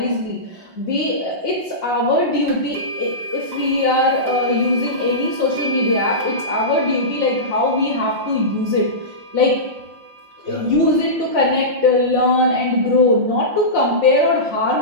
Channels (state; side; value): late; left; 5.7 ms